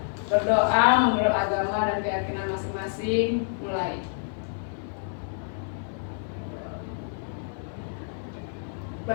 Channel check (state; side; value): silent; right; 59 dB below the other